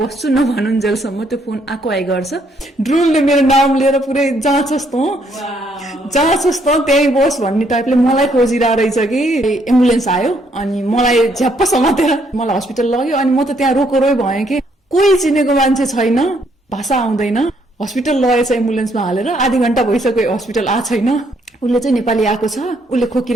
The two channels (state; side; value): normal; both; correlation 0.70